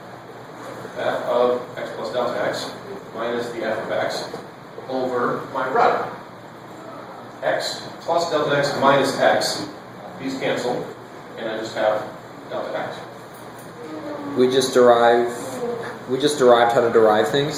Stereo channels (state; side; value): identical; both; correlation 1.00